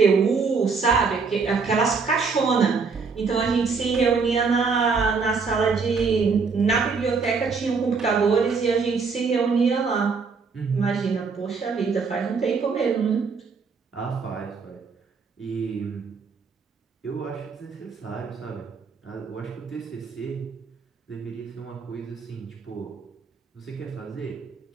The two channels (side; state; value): left; quieter; 5.0 dB